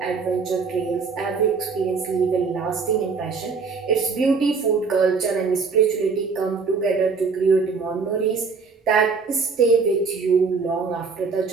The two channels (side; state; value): left; quieter; 4.9 dB